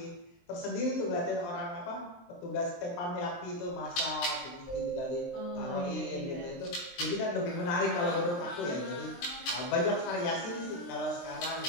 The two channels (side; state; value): right; late; 23 ms